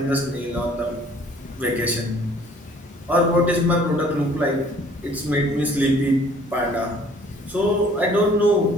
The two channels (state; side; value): normal; both; correlation 0.56